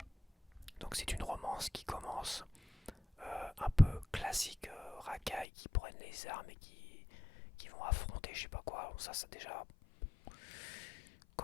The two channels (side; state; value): right; drops out; at 5.5 s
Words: Donc c'est une romance qui commence un peu classique, racaille, qui prennent les armes et qui vont affronter je sais pas quoi. Bon, ça déjà